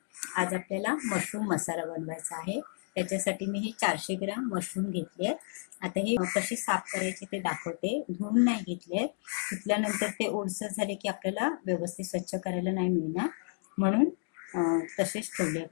आज आपल्याला मशरूम मसाला बनवायचा आहे. त्याच्यासाठी मी हे 400 ग्राम मशरूम घेतले आहेत. आता हे कसे साफ करायचे ते दाखवते. धुवून नाही घेतले. धुतल्यानंतर ते ओलसर झाले की आपल्याला व्यवस्थित स्वच्छ करायला नाही मिळणार, म्हणून तसेच ठेवले.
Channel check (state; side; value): silent; right; 57 dB below the other